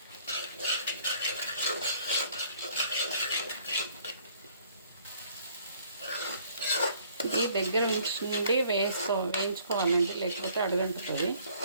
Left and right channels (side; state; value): both; inverted; correlation -0.59